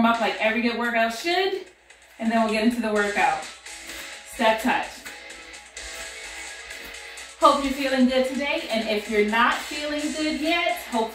up like every good workout should, and then we'll get into the workout. Step touch. Hope you're feeling good today, and if you're not feeling good yet,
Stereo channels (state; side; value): identical; both; correlation 1.00